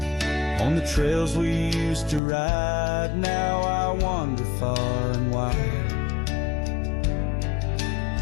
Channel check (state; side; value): drops out; right; at 2.2 s